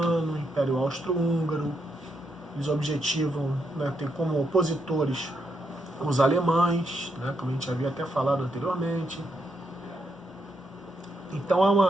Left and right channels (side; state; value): both; normal; correlation 0.79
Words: o Império Austro-Húngaro, eles objetivam, né, ter como opositores os alemães, né, como a gente havia até falado anteriormente. Então há